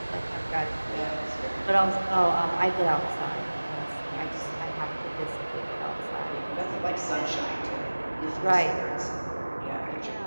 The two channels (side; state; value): both; inverted; correlation -1.00